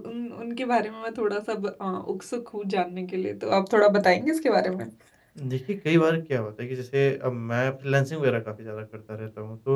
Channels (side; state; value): both; identical; correlation 1.00